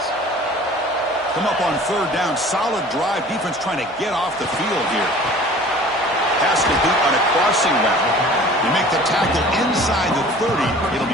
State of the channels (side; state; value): both; normal; correlation 0.46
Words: Come up on third down. Solid drive. Defense trying to get off the field here. Pass complete on a crossing route. They make the tackle inside the 30. It'll